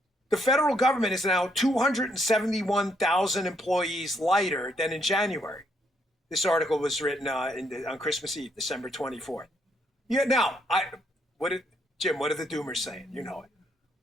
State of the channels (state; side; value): normal; both; correlation 0.73